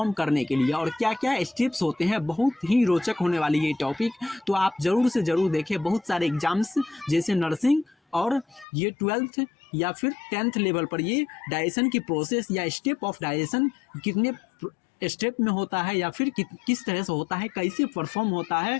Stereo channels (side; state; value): right; drops out; at 8.7 s